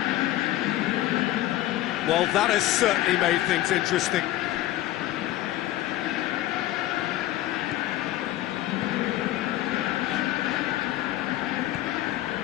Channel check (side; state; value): right; quieter; 15.0 dB